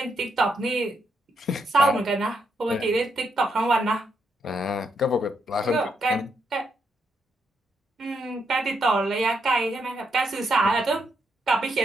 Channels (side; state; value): both; normal; correlation 0.79